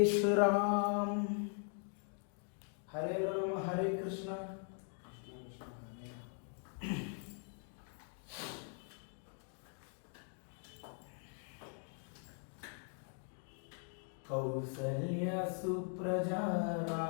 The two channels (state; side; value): silent; right; 50 dB below the other